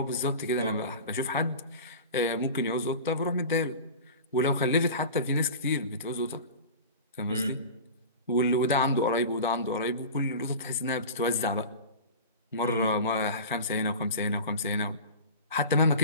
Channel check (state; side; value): inverted; both; correlation -0.33